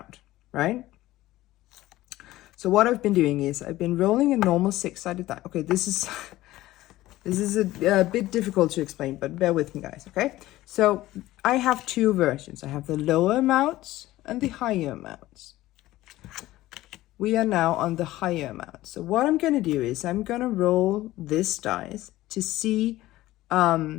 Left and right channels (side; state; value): right; quieter; 16.4 dB